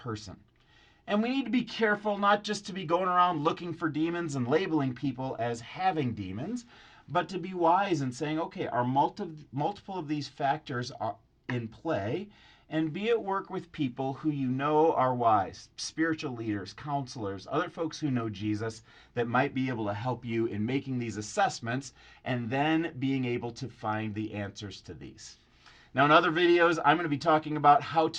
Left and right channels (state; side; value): identical; both; correlation 1.00